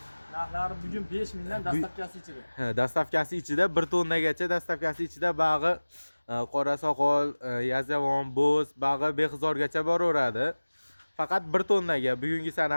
Narxlari bugun 5000 dan dastavkasi ichida. Dastavkasi ichida 1 tonnagacha dastavkasi ichida bag'i qora soqol, yazavon, bo'z, bag'i behzorgacha boraveradi. Faqat 1 tonnaga bugungi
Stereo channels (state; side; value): inverted; both; correlation -1.00